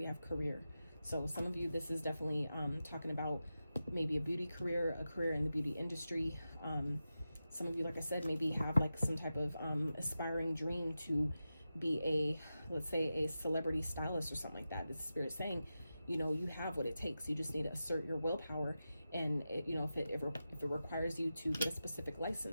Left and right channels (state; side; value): inverted; both; correlation -0.92